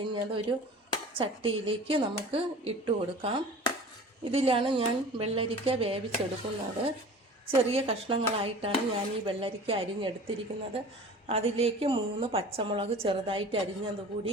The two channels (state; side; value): normal; both; correlation 0.41